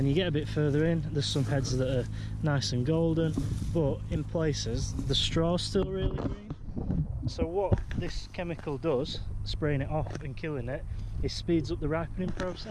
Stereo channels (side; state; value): both; identical; correlation 1.00